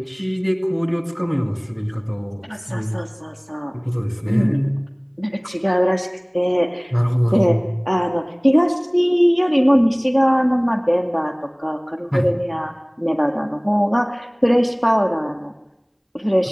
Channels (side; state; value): both; identical; correlation 1.00